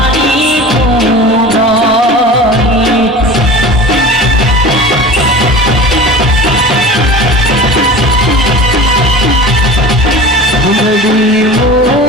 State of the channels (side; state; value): both; normal; correlation 0.37